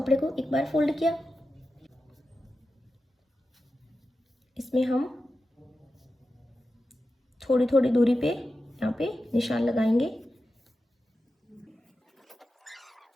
को एक बार फोल्ड किया। इसमें हम थोड़ी थोड़ी दूरी पे यहाँ पे निशान लगाएंगे।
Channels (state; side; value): normal; both; correlation 0.92